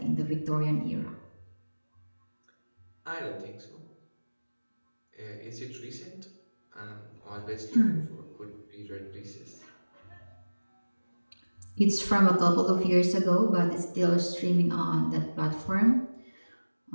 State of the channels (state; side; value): inverted; both; correlation -1.00